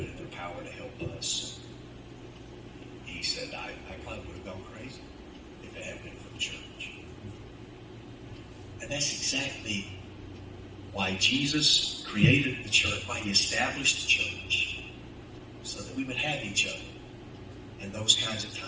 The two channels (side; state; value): both; identical; correlation 1.00